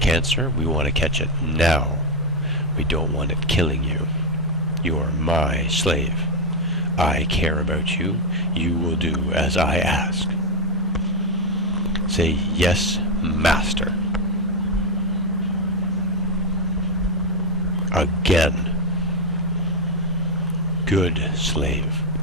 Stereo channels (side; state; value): both; normal; correlation 0.04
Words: we want to catch it now. We don't want it killing you. You are my slave. I care about you. You will do as I ask. Say, yes, master. Again. Good slave.